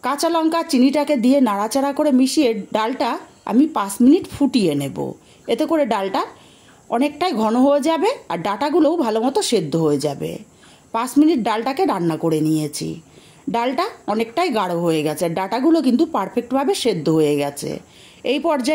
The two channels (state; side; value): identical; both; correlation 1.00